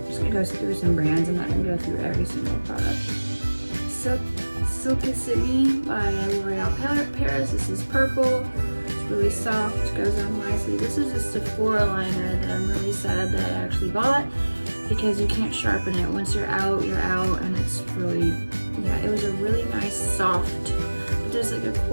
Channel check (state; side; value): inverted; both; correlation -1.00